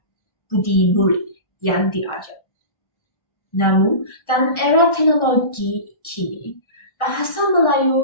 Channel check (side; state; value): right; late; 1.4 ms